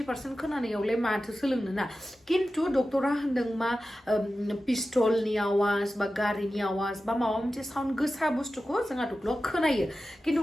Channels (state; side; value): normal; both; correlation 0.94